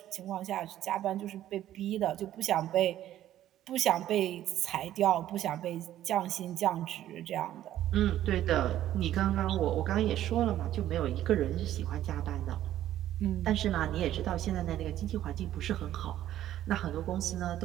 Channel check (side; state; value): left; quieter; 12.6 dB